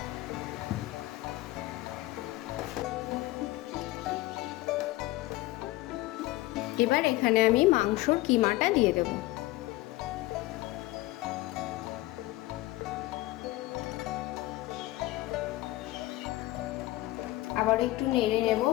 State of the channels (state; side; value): quieter; right; 18.4 dB